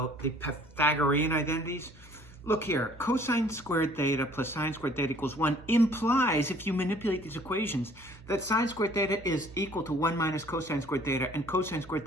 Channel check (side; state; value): right; noise; hum, 20 dB below the sound